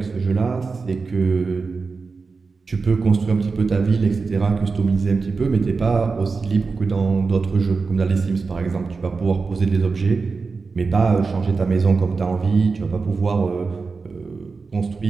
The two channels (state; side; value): quieter; left; 4.5 dB